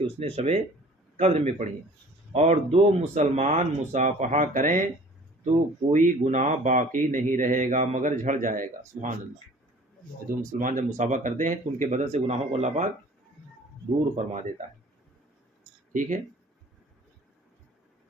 اس نے شب قدر میں پڑھی. اور 2 مسلمان مصافحہ کریں تو کوئی گناہ باقی نہیں رہے گا مگر جھڑ جائے گا. سبحان اللہ. 2 مسلمان جب مصافحہ کرتے ہیں تو ان کے بدن سے گناہوں کو اللہ پاک دور فرما دیتا ہے. ٹھیک ہے.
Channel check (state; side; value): normal; both; correlation 0.49